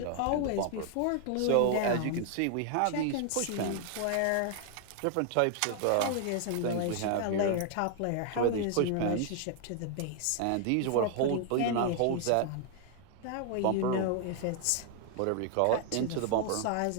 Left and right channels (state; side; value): different; both; correlation 0.00